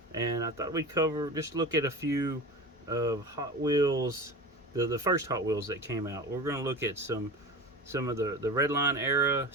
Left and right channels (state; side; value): normal; both; correlation 0.31